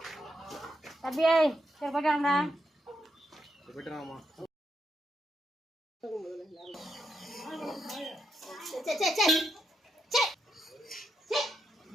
தம்பியே சரி போயிட்டாங்கடா.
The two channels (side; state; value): both; normal; correlation 0.82